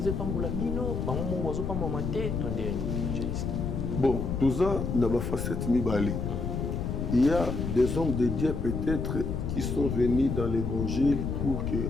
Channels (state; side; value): noise; left; rumble, 2 dB below the sound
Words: pas mon bino, pas mon oiseau, pas mon maté, ton dernier évangéliste. Bon, tout ça n'a pas facette mibali. Il y a des hommes de Dieu peut-être qui sont venus dans l'évangile pour